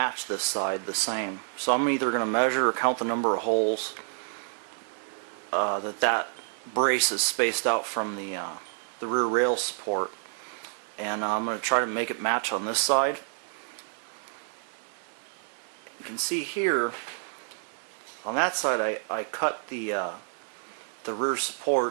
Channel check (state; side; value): silent; left; digital silence